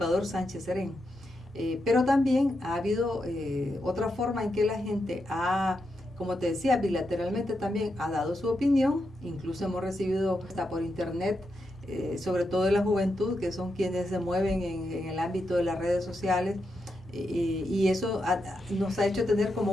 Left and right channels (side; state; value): both; normal; correlation 0.85